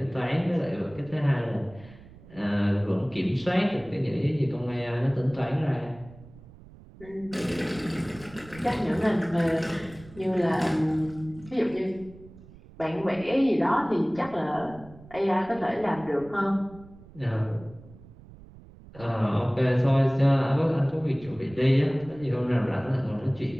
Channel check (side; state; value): right; noise; rumble, 21 dB below the sound